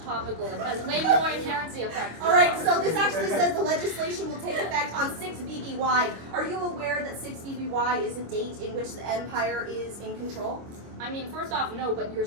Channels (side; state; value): left; late; 25 ms